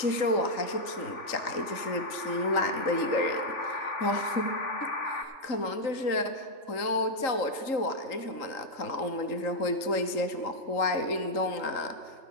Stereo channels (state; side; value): late; right; 3.8 ms